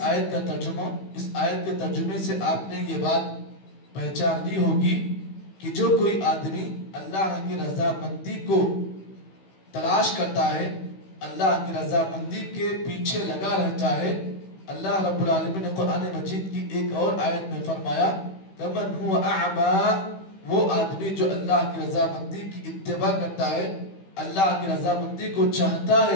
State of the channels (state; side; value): late; right; 16 ms